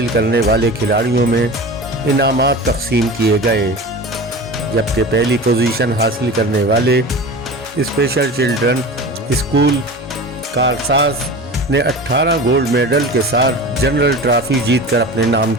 करने वाले खिलाड़ियों में इनामात तकसीम किए गए, जबकि पहली पोजीशन हासिल करने वाले स्पेशल चिल्ड्रन स्कूल कारसाज ने 18 गोल्ड मेडल के साथ जनरल ट्रॉफी जीतकर अपने नाम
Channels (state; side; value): normal; both; correlation 0.33